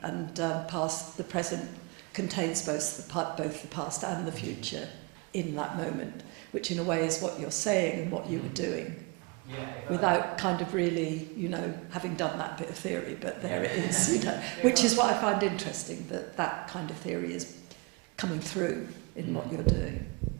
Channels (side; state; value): left; quieter; 28.5 dB